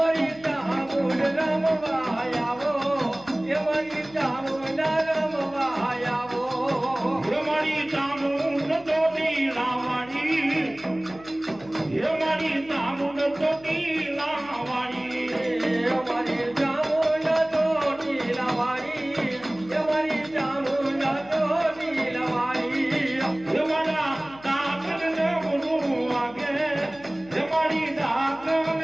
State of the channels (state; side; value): noise; left; hum, 22 dB below the sound